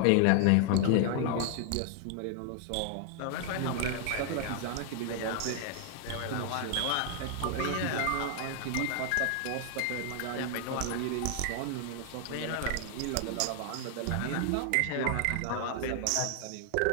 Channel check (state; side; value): different; both; correlation 0.00